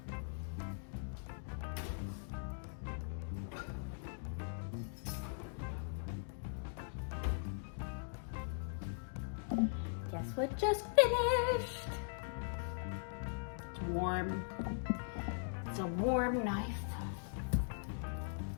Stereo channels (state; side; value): silent; right; digital silence